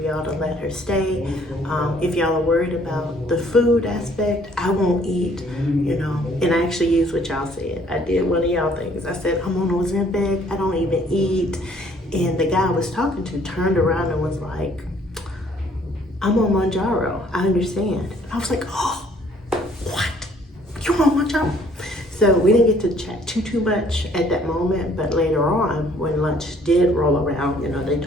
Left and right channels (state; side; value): normal; both; correlation 0.61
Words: to let her stay? If y'all are worried about the food aspect, I won't eat, you know. And I actually used what y'all said. I did one of y'all things. I said, I'm on Ozempic, I don't even eat. And the guy I was talking to turned around and was like, I'm on Mounjaro, I understand. I was like, oh, what? You on Mounjaro? So we didn't get to chat too much at that moment, but later on, when lunch did roll around, you know, they